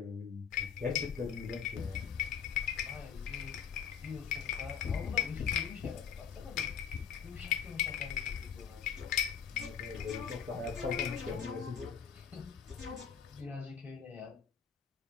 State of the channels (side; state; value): right; quieter; 7.5 dB